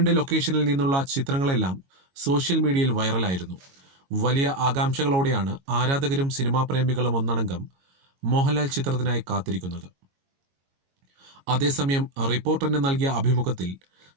ലൊക്കേഷനിൽ നിന്നുള്ള ചിത്രങ്ങളെല്ലാം സോഷ്യൽ മീഡിയയിൽ വൈറലായിരുന്നു. വലിയ ആകാംക്ഷകളോടെയാണ് ആരാധകരും സിനിമാ പ്രേമികളും ഒന്നടങ്കം മോഹൻലാൽ ചിത്രത്തിനായി കാത്തിരിക്കുന്നത്. അതേസമയം റിപ്പോർട്ടറിന് നൽകിയ അഭിമുഖത്തിൽ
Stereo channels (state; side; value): late; left; 22 ms